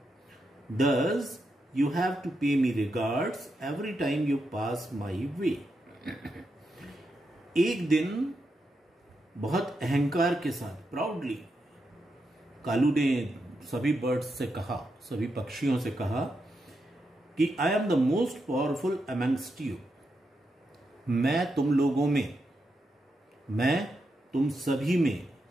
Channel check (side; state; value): both; normal; correlation 0.84